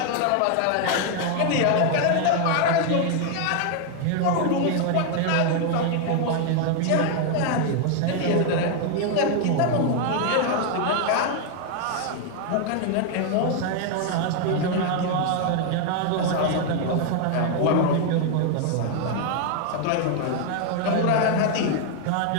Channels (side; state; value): both; different; correlation 0.00